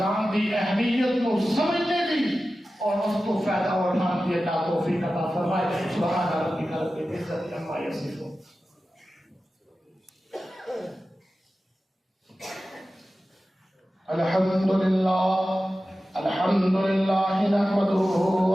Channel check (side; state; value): both; normal; correlation 0.94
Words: دی اہمیت کو سمجھنے دی اور اس کو فائدہ اٹھانے دی اللہ توفیق عطا فرمائے۔ سبحان ربک رب العزت العزة عما يصفون. الحمد لله نحمده